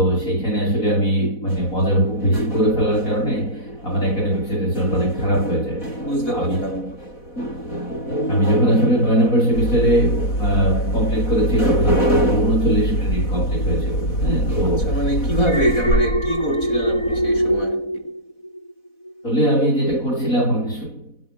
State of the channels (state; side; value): late; right; 4.1 ms